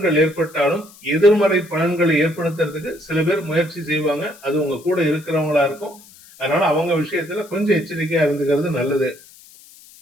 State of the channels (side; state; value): left; noise; hiss, 23 dB below the sound